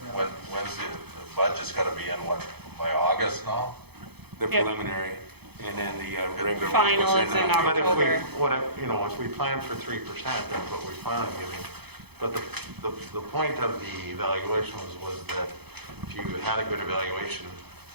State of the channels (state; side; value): late; left; 0.98 ms